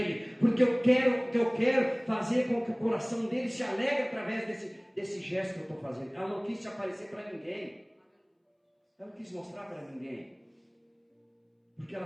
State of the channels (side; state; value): both; identical; correlation 1.00